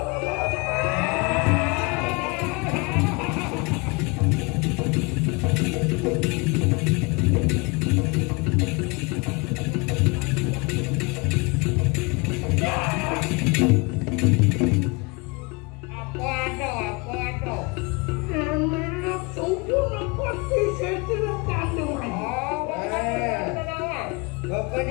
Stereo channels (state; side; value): quieter; right; 28.1 dB